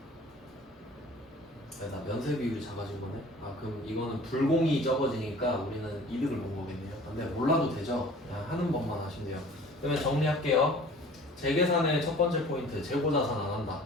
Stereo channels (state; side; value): normal; both; correlation 0.47